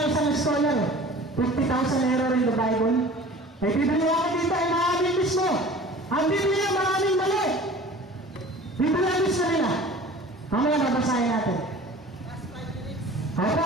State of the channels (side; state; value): both; normal; correlation 0.43